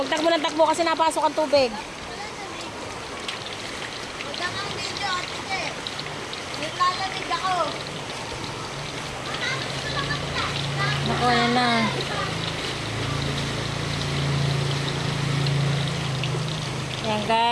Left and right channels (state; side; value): identical; both; correlation 1.00